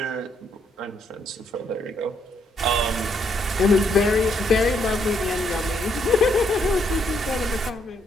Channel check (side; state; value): both; normal; correlation 0.73